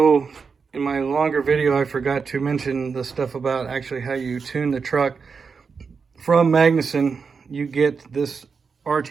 in my longer video, I forgot to mention the stuff about actually how you tune the truck. From Magnuson, you get this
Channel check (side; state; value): left; quieter; 5.4 dB